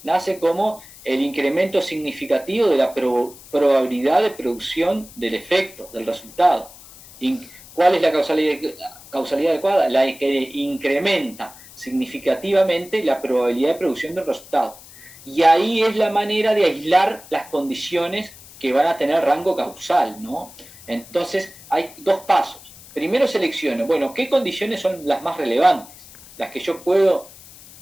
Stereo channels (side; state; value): left; noise; hiss, 20 dB below the sound